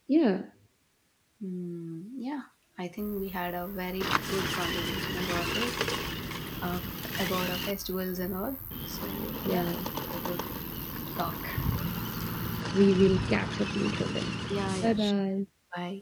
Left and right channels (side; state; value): both; identical; correlation 1.00